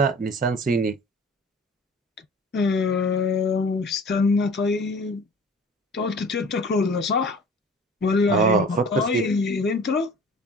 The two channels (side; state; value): both; normal; correlation 0.45